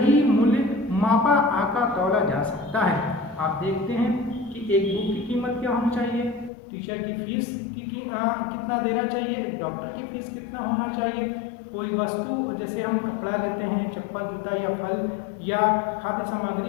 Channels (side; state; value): right; drops out; at 6.5 s